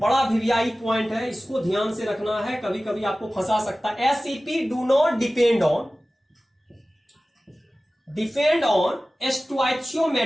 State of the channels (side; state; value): both; normal; correlation 0.97